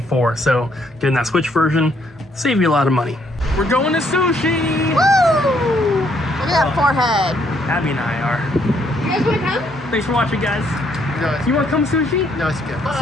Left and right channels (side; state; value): both; normal; correlation 0.70